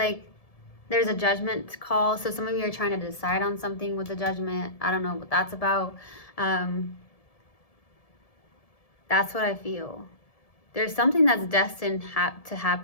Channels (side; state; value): right; late; 1.7 ms